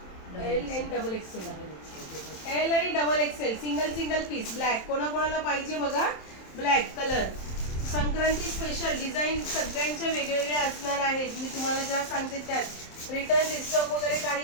एल आणि डबल एक्सेल. एल आणि double XL single single piece black. कोणाकोणाला पाहिजे बघा black colour. Sankranti special design सगळ्यांच्या वेगवेगळ्या असणार आहेत. मी तुम्हाला ज्या सांगते त्यात रिटर्न रिस्टॉक वगैरे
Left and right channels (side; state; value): right; late; 27 ms